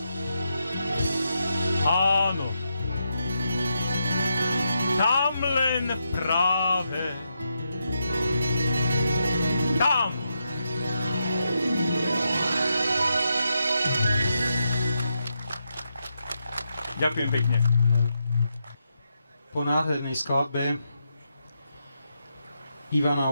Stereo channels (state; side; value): inverted; both; correlation -0.84